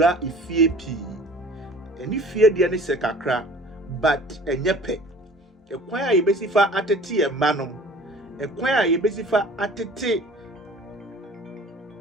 efie pi eni fie de ne se kakra but enyepe ekwan a yebesifa atete e manom ekwan a yebesifa atete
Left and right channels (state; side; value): normal; both; correlation 0.46